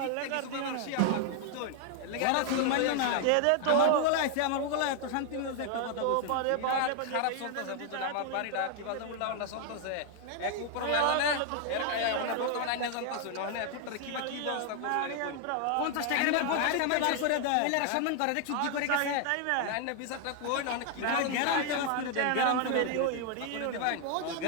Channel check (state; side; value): different; both; correlation 0.00